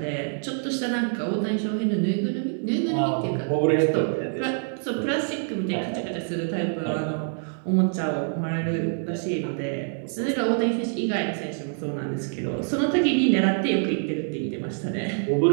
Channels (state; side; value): silent; left; 57 dB below the other